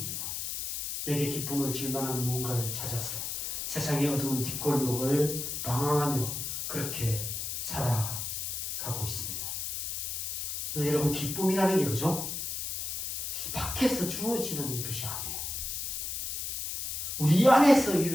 내게 기쁨을 줄 만한 무언가를 찾아서 세상의 어두운 뒷골목을 방황하며 그렇게 살아가고 있습니다. 여러분, 기쁨이라는 게 그죠? 밖에서 주어지는 것이 아니에요. 우리 안에서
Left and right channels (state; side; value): noise; left; hiss, 3 dB below the sound